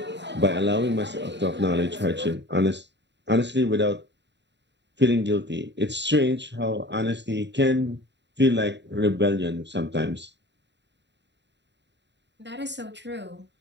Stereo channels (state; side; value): late; left; 0.52 ms